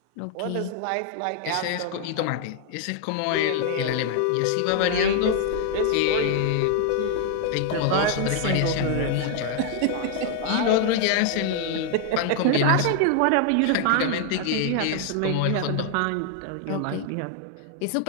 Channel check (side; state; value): both; different; correlation 0.00